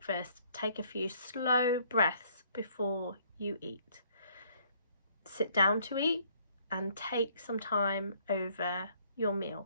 take a few slow breaths before you eat. Sit down to eat and take some time over your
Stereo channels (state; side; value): inverted; both; correlation -0.64